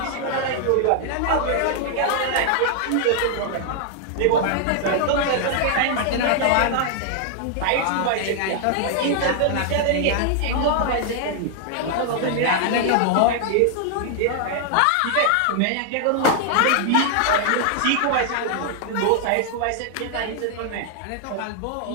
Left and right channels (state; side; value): different; both; correlation 0.00